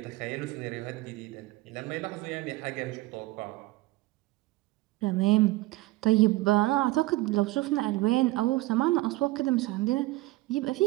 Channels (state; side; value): quieter; left; 19.3 dB